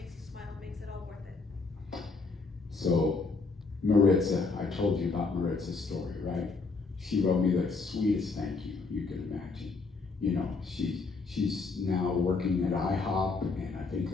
you smile and makes it all worth it? So Maritza, I told you about Maritza's story, right? She wrote me the sweetest thank you can imagine. She's now working at IHOP, and I think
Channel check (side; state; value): right; quieter; 4.1 dB